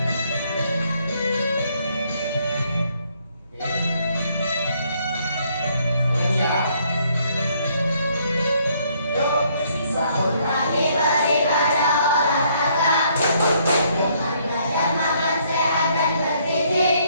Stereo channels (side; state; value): both; inverted; correlation -0.68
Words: Bangun pagi beribadah, olahraga, belajar makan sehat dan